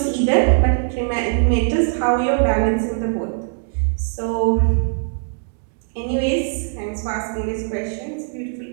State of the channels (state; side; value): silent; left; digital silence